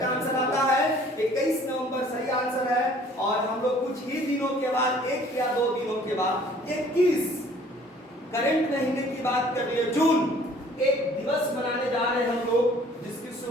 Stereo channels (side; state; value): both; normal; correlation 0.55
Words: आंसर आता है 21 नवंबर सही आंसर है। और हम लोग कुछ ही दिनों के बाद, 1 या 2 दिनों के बाद 21 करंट महीने की बात कर लिए, जून, एक दिवस मनाने जा रहे हैं हम लोग, जिसकी